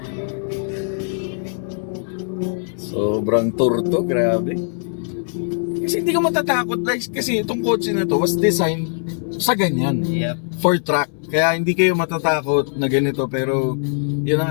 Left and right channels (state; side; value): silent; right; 65 dB below the other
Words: Sobrang turto, grabe. Kasi hindi ka matatakot guys, kasi itong kotse na to was designed sa ganyan. Yep. For track. Kaya hindi kayo matatakot na ganito, pero yun na